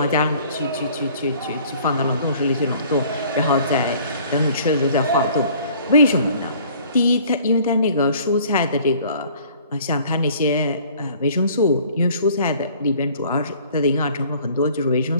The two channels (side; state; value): both; inverted; correlation -0.54